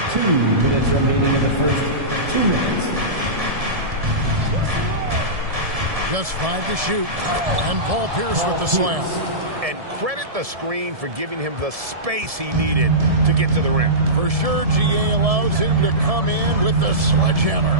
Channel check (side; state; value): left; late; 1.7 ms